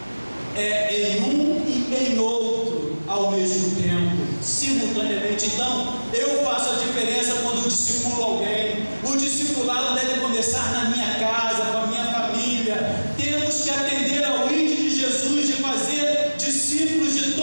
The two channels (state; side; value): inverted; both; correlation -1.00